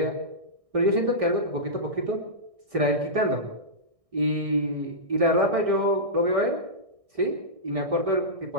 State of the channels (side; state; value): left; late; 1.6 ms